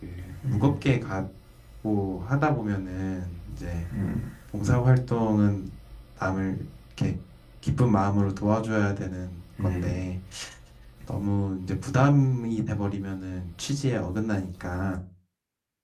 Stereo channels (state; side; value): identical; both; correlation 1.00